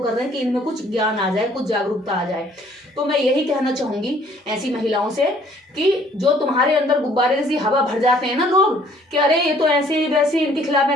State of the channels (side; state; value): both; normal; correlation 0.59